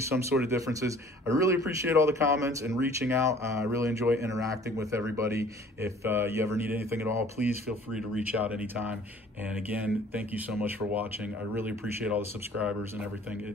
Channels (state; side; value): normal; both; correlation 0.52